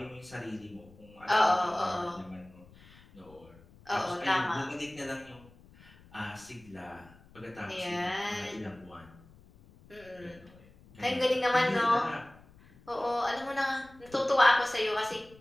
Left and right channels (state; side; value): noise; left; rumble, 24 dB below the sound